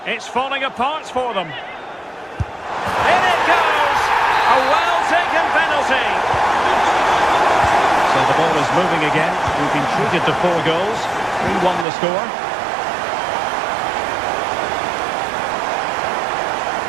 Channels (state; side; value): drops out; left; at 11.9 s